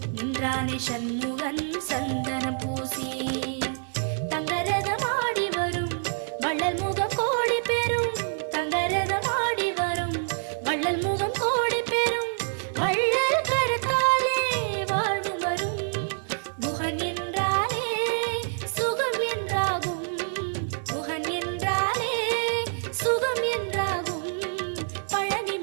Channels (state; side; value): silent; left; 59 dB below the other